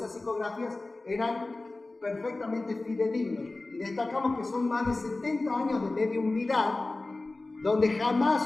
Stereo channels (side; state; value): right; quieter; 3.1 dB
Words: psicografías eran perfectamente fidedignos. Y destacamos que son más de 70 años de mediumnidad, donde